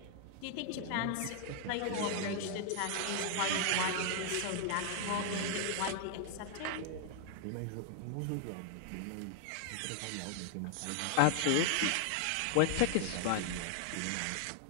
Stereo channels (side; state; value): both; different; correlation 0.00